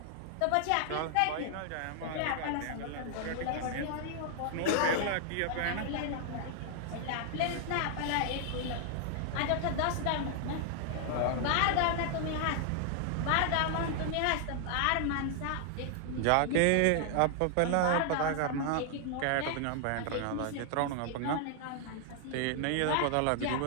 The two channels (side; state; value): both; different; correlation 0.00